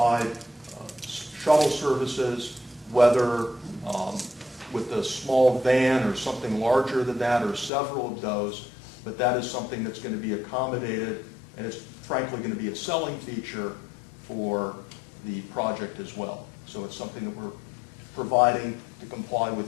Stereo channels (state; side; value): drops out; right; at 7.7 s